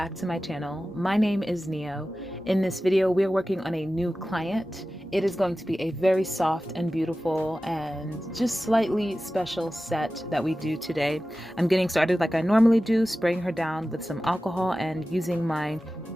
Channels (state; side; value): normal; both; correlation 0.95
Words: to my channel. My name is Neo. In this video, we are working on a new client. It is going to be a very soft and beautiful and just slightly special set that we do today. I'm getting started like I normally do, spraying her down with some alcohol and using my